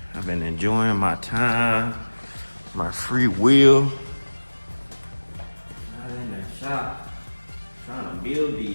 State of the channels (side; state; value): both; inverted; correlation -1.00